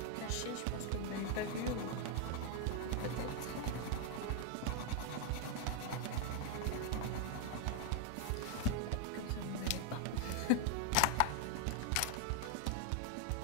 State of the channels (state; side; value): different; both; correlation 0.01